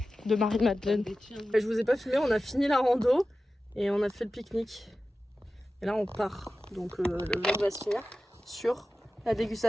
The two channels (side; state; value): both; normal; correlation 0.94